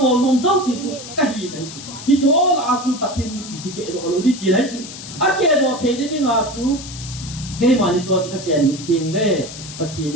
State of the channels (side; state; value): left; noise; hiss, 12 dB below the sound